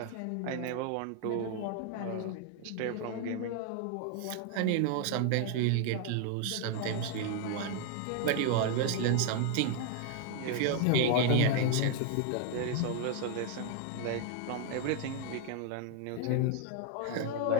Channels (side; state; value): both; different; correlation 0.00